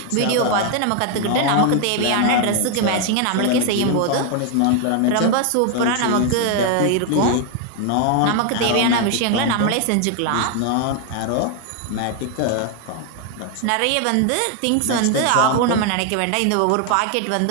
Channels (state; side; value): different; both; correlation 0.00